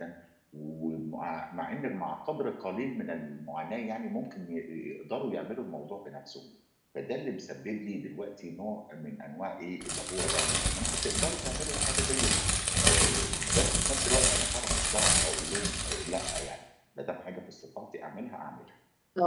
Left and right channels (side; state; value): both; identical; correlation 1.00